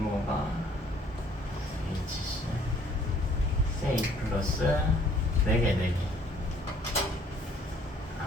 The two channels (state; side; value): normal; both; correlation 0.60